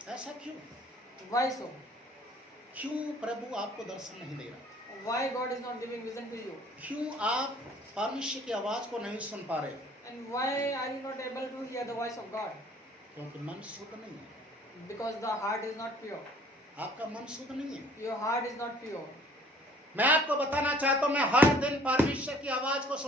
ऐसा क्यों? Why so? क्यों प्रभु आपको दर्शन नहीं दे रहा? Why God is not giving vision to you? क्यों आप परमेश्वर की आवाज को नहीं सुन पा रहे? And why are you not able to hear the voice of God? क्योंकि मन शुद्ध नहीं है। Because the heart is not pure. आपका मन शुद्ध नहीं है। Your heart is not pure. मैं आपको बताना चाहता हूँ, मैं हर दिन परमेश्वर की आवाज को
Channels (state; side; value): normal; both; correlation 0.54